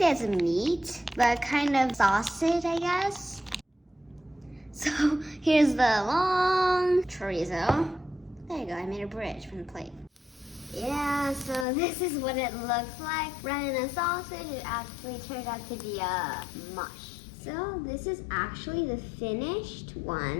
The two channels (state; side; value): drops out; right; at 11.7 s